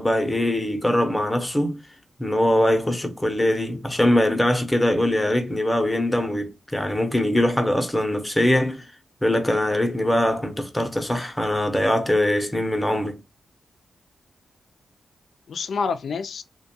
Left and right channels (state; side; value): normal; both; correlation 0.94